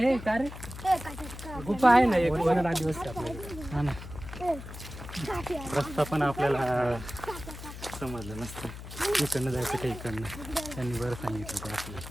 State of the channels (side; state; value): left; noise; hum, 11 dB below the sound